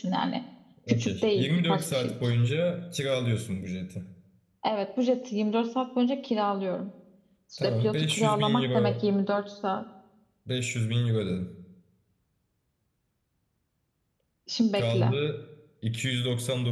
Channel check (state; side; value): identical; both; correlation 1.00